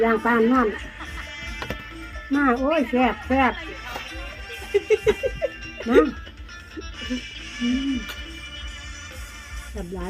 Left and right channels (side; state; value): both; identical; correlation 1.00